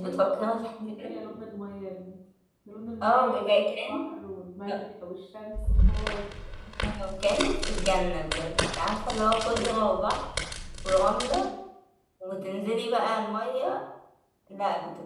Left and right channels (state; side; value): identical; both; correlation 1.00